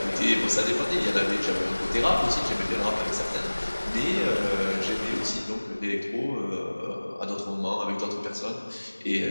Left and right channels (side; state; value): both; inverted; correlation -1.00